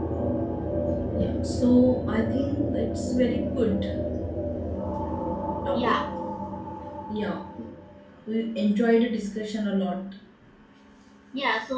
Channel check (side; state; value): both; identical; correlation 1.00